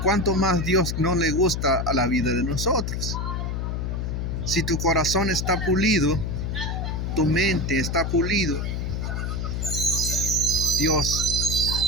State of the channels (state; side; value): noise; left; hum, 2 dB below the sound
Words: ¿cuánto más Dios no le gusta a la vida de nosotros? Si tu corazón está pulido, tu mente está pulido, Dios